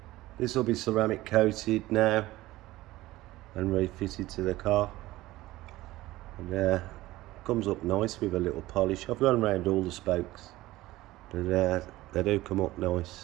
this will be ceramic coated now and refitted to the car, and comes up nice with a little polish. I've gone around all the spokes, but they do come up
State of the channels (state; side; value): quieter; left; 17.4 dB